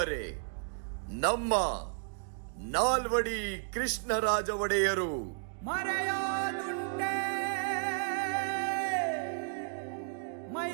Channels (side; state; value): left; silent; digital silence